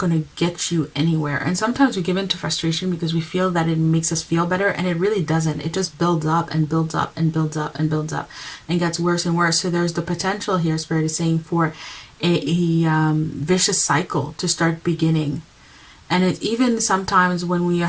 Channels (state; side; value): identical; both; correlation 1.00